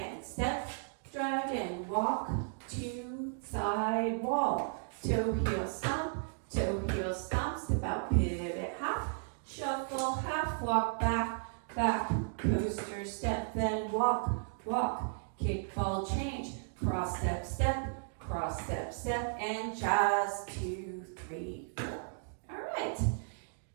step, drag, and walk to side wall. Toe, heel, stomp, step out, pivot, half, shuffle, half, walk back, back, coaster, step, then walk, walk, kick, ball, change, cross, step, step, and jazz, 2, 3, 4. All right,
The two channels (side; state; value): left; silent; digital silence